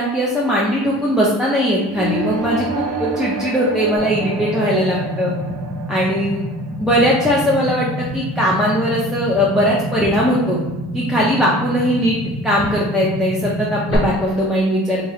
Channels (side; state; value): both; normal; correlation 0.46